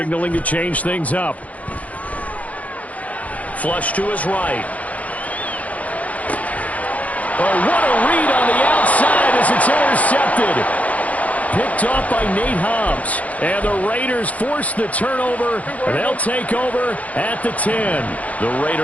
to change things up. Flush to his right. Oh, what a read on the outside as it's intercepted. Picked off by Nate Hobbs. And the Raiders force the turnover, and they'll take over at the 10. The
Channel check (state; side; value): late; right; 0.070 ms